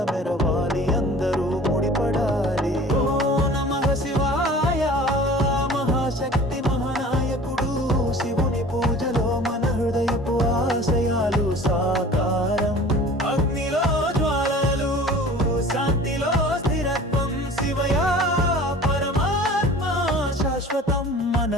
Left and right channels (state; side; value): normal; both; correlation 0.44